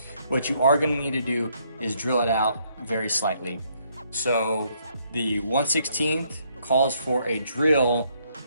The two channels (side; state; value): both; inverted; correlation -0.70